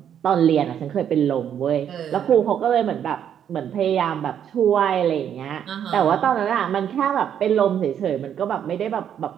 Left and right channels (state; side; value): quieter; left; 9.2 dB